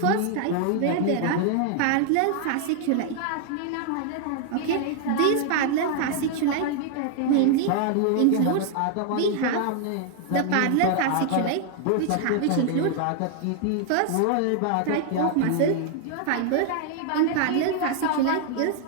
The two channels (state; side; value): different; both; correlation 0.00